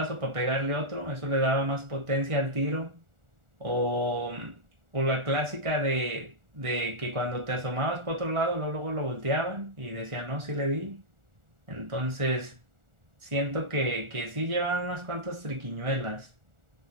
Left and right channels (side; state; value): left; late; 1.4 ms